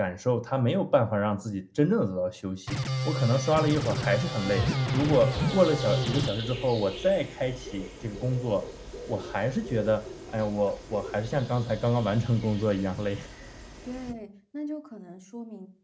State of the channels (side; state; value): both; identical; correlation 1.00